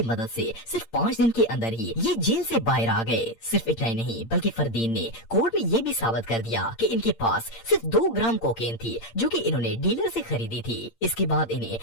मदद से सिर्फ 5 दिन के अंदर ही ये जेल से बाहर आ गए। सिर्फ इतना ही नहीं बल्कि फरदीन ने कोर्ट में ये भी साबित कर दिया कि इनके पास सिर्फ 2 ग्राम कोकेन थी जो कि इन्होंने डीलर से खरीदी थी। इसके बाद इन्हें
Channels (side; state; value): right; late; 8.8 ms